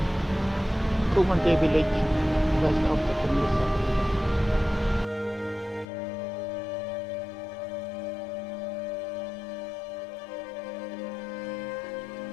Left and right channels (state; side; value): drops out; right; at 5.9 s